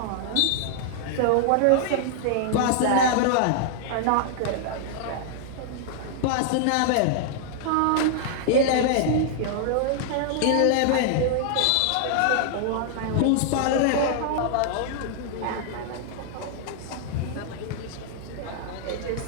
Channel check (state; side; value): different; both; correlation -0.01